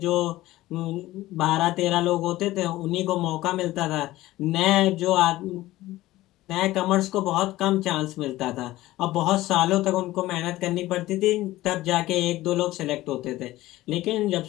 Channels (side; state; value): right; quieter; 16.8 dB